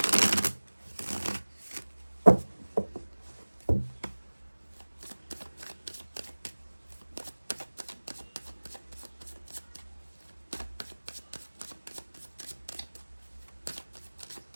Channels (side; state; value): both; inverted; correlation -1.00